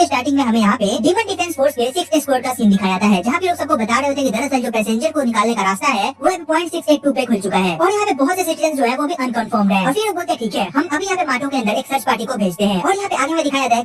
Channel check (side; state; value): both; identical; correlation 1.00